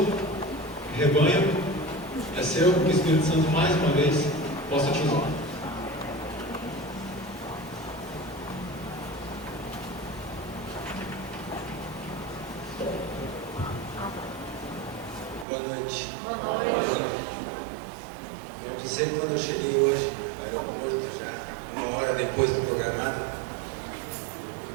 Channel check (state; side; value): drops out; left; at 15.5 s